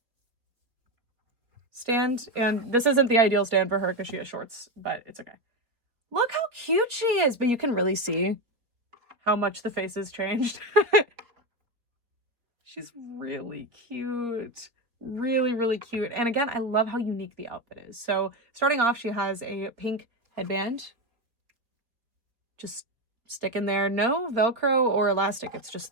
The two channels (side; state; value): left; late; 4.2 ms